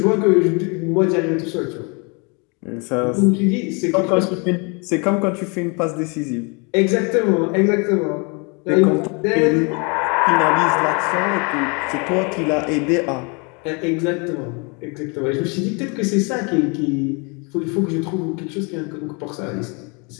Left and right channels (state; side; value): quieter; right; 32.3 dB